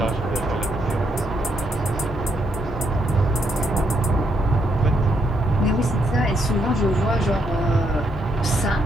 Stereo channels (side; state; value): both; normal; correlation 0.76